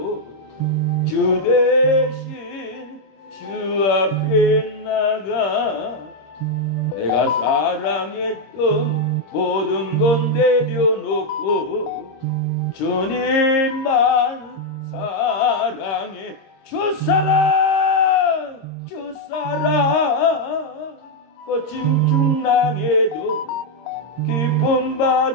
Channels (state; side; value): late; right; 26 ms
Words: 주 대신 주 앞에 나가 내가 사랑했던 모든 건 내려놓고 주님만 사랑해. 주 사랑 주 사랑 거친 중랑에도 깊은